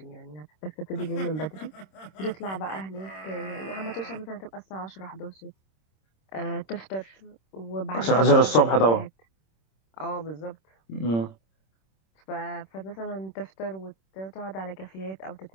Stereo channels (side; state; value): right; late; 26 ms